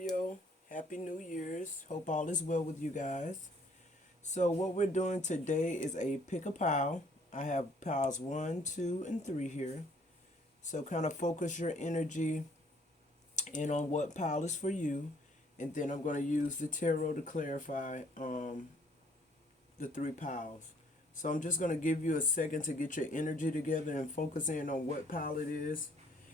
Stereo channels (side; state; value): both; normal; correlation 0.61